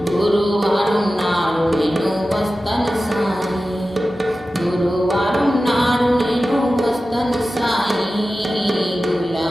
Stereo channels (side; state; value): both; normal; correlation 0.94